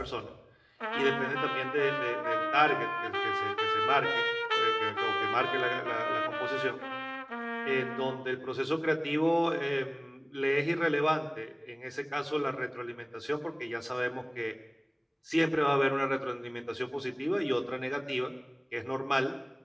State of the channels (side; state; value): both; identical; correlation 1.00